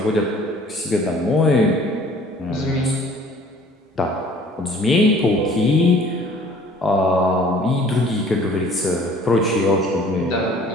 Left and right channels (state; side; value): normal; both; correlation 0.52